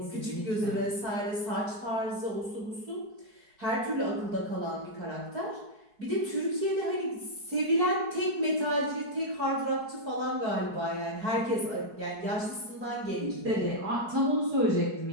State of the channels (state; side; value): late; left; 4.7 ms